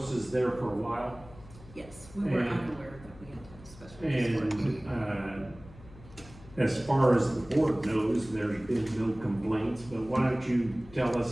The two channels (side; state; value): left; noise; hum, 20 dB below the sound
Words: there for a while? Yes, we were And- unaware that we had to have special use for it. And, as far as the board knows, there's been no complaints, but why don't you tell